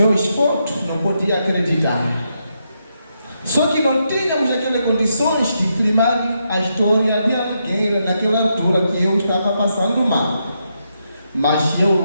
fotos, não podia acreditar. Só que não tínhamos aquelas condições de filmar a história de alguém naquela altura que eu estava passando mal. Mas eu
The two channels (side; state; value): both; inverted; correlation -0.81